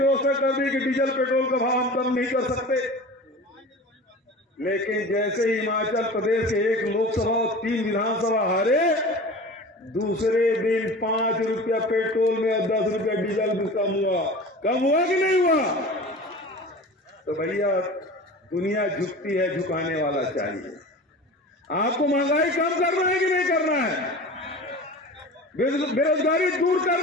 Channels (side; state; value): both; normal; correlation 0.36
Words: कर दी कि डीजल पेट्रोल का भाव हम कम नहीं कर सकते। लेकिन जैसे ही हिमाचल प्रदेश के 1 लोकसभा और 3 विधानसभा हारे, दूसरे दिन 5 रुपया पेट्रोल में और 10 रुपया डीजल भी कम हुआ कि नहीं हुआ? तो भैया दुनिया झुकती है, झुकाने वाला चाहिए। आपको महंगाई कम करना है कि नहीं करना है? बेरोजगारी दूर